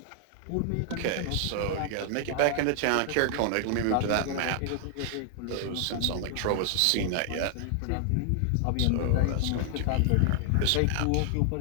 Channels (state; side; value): different; both; correlation 0.00